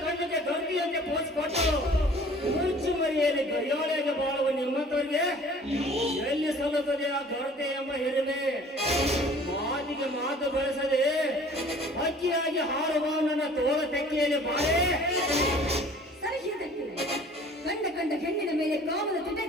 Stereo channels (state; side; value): normal; both; correlation 0.50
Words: ಕಣ್ಣಿಗೆ ಗರ್ಭಿಯಂತೆ ಪೋಷಿಸಿಕೊಟ್ಟು ಮುಚ್ಚು ಮರಿಯಲ್ಲಿ ಗಡಿಯಾಳಿಯಾಗಿ ಬಾಳುವ ನಿಮ್ಮಂತವರಿಗೆ ಎಲ್ಲಿ ಸಲ್ಲುತ್ತದೆ ಆ ಗರತೆ ಎಂಬ ಹಿರಿಮೆ? ಮಾತಿಗೆ ಮಾತು ಬಳಸದೆ ಹಕ್ಕಿಯಾಗಿ ಹಾರುವ ನನ್ನ ತೋಳ ತೆಕ್ಕೆಯಲ್ಲಿ ಬಾಳೆ. ಸರಿ ಇದಕ್ಕೆ ಕಂಡ ಹೆಣ್ಣಿನ ಮೇಲೆ ಕಾಮದ ತಿಟ್ಟೆ